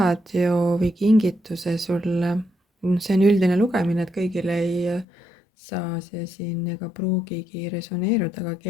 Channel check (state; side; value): drops out; right; at 5.1 s